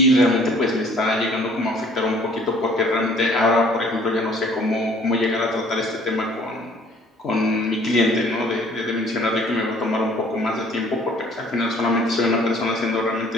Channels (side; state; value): both; normal; correlation 0.56